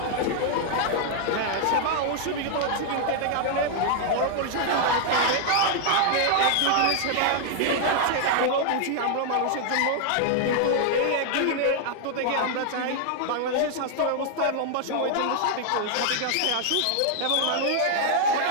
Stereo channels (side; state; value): both; different; correlation 0.00